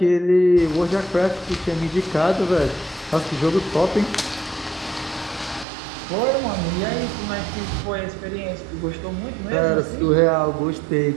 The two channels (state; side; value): drops out; left; at 5.7 s